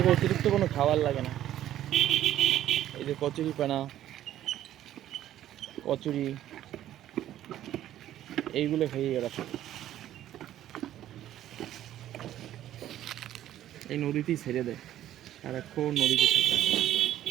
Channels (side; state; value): left; quieter; 12.4 dB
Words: অতিরিক্ত কোনো খাবার লাগে না। এই যে কচুরি পানা, কচুরি এইগুলো খাইয়ে এরা সব এই নদীতেই ছেড়ে দেয়, সারাক্ষণ নদীতে থাকে।